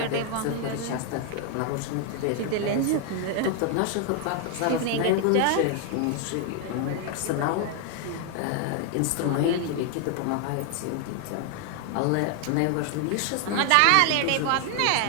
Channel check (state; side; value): different; both; correlation 0.00